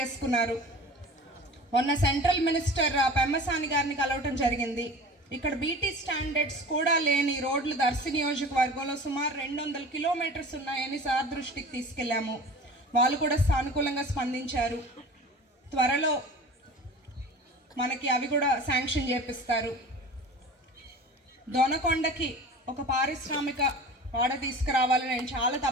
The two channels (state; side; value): normal; both; correlation 0.38